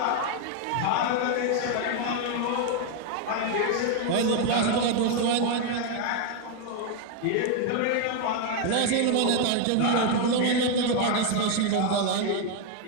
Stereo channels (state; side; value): different; both; correlation 0.01